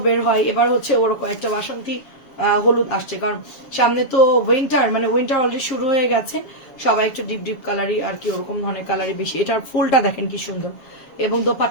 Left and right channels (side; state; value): right; late; 7.1 ms